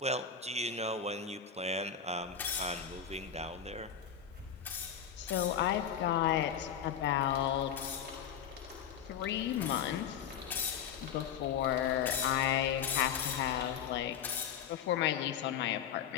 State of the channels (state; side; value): quieter; right; 8.1 dB